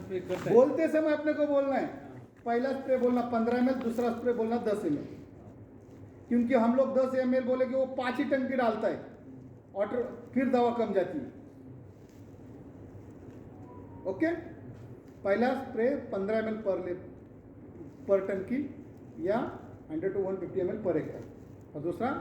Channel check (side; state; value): both; identical; correlation 1.00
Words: स्प्रे करता है। बोलते समय अपने को बोलना है, पहला स्प्रे बोलना 15 ml, दूसरा स्प्रे बोलना 10 ml, क्योंकि हम लोग 10 ml बोले कि वो 5 ही टंकी डालता है और फिर दवा कम जाती है। ओके, पहला स्प्रे 15 ml पर टंकी या 100 to 150 ml पर एकड़, और दूसरा